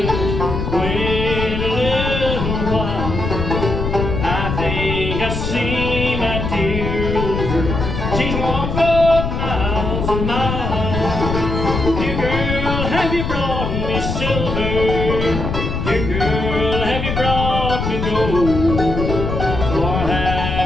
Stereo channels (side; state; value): left; noise; rumble, 3 dB below the sound